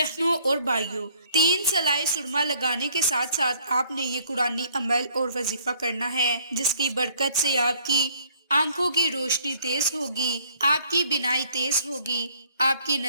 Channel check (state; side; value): inverted; both; correlation -0.62